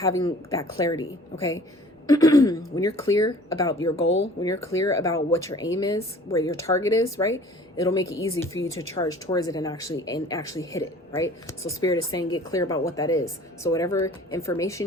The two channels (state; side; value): normal; both; correlation 0.49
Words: that clarity, okay? When you're clear about your goal, when you're clear about what your aim is, where your target is, right? It'll make it easy for you to charge towards it and actually hit it, right? So Spirit is saying get clear about what that is. So whatever